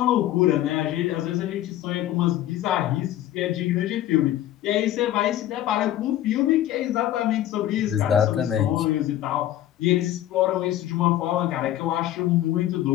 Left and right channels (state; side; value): quieter; right; 12.9 dB